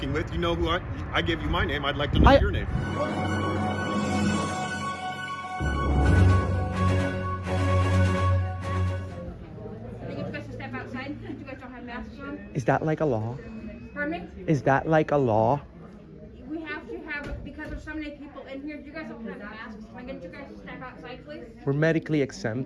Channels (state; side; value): identical; both; correlation 1.00